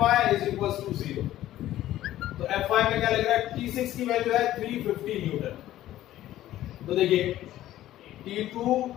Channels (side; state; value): right; quieter; 13.8 dB